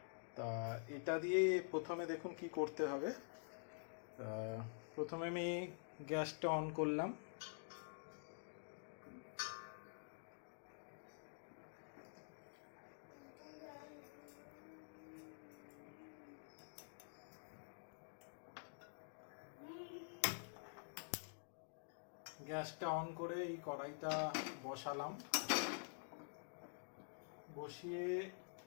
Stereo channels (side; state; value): right; silent; digital silence